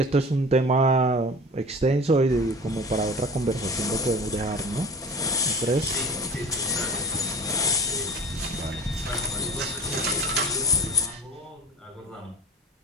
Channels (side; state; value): both; normal; correlation 0.38